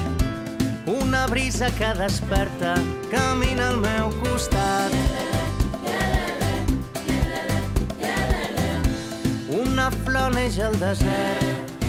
Una brisa que desperta camina al meu costat. Una flor neix al desert,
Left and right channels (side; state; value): both; identical; correlation 1.00